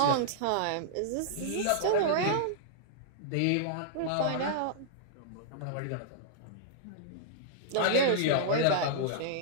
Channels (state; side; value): different; both; correlation -0.01